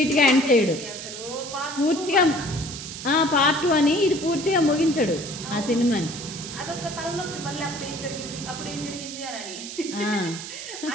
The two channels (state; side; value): noise; right; hiss, 10 dB below the sound